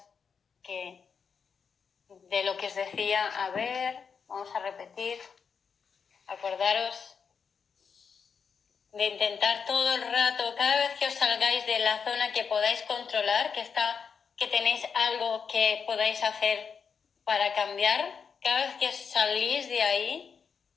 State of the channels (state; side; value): quieter; right; 6.2 dB